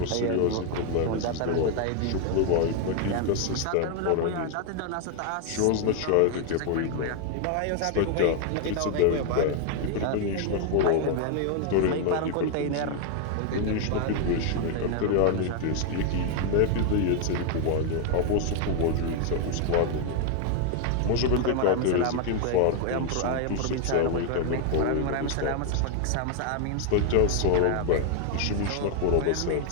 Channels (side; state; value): both; different; correlation 0.00